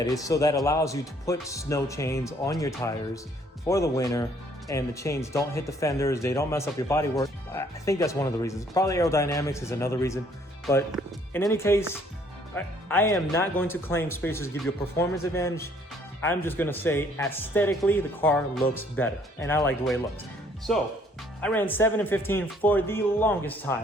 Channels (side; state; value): both; normal; correlation 0.62